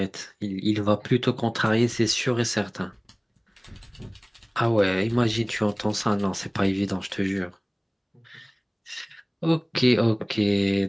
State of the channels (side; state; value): both; identical; correlation 1.00